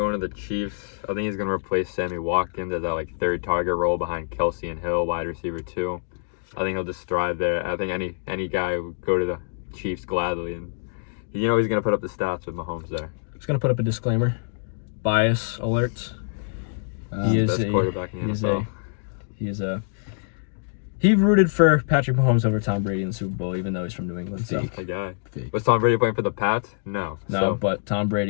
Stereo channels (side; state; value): right; silent; digital silence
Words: to the Chiefs. I think he's going to replace Sammy Watkins as that like third target role behind Kelsey and Hill, wide receiver 2. I think he'll just thrive there. I think any guy would go to the Chiefs gladly, and he's going to put up the stats with Mahomes there. Just gonna put up a disclaimer. Bias alert. He is Best quarterback in the NFL. He rooted for Patrick Mahomes over Tom Brady in the Super Bowl, even though he's from New England. So A guy. Fake. Was Tom Brady playing for the Pats? No. So, but Tom